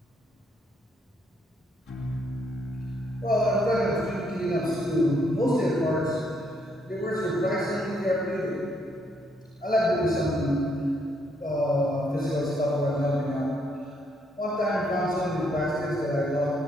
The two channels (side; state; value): both; normal; correlation 0.72